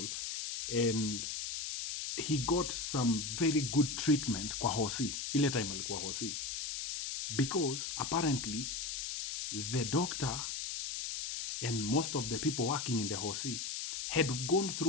and he got some very good treatment kwa hosi. Ile time alikuwa hosi. Because apparently the doctor and most of the people working in the hosi had gone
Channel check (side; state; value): left; noise; hiss, 4 dB below the sound